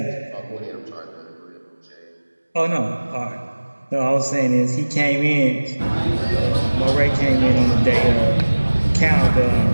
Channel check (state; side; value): inverted; both; correlation -1.00